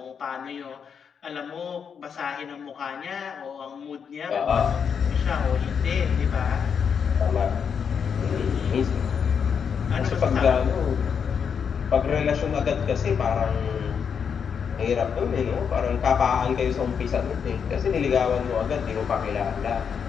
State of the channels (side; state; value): right; quieter; 6.9 dB